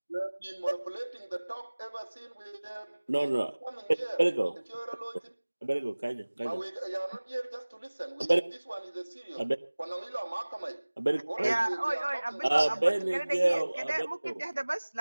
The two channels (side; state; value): both; inverted; correlation -1.00